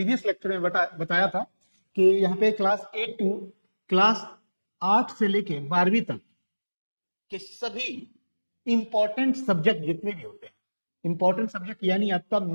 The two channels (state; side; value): inverted; both; correlation -1.00